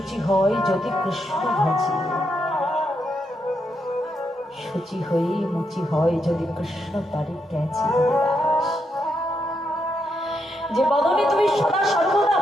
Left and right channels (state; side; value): normal; both; correlation 0.80